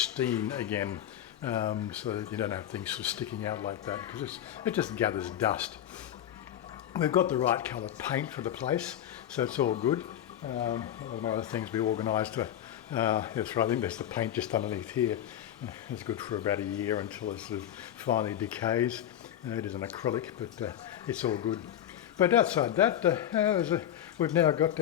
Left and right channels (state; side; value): quieter; right; 11.0 dB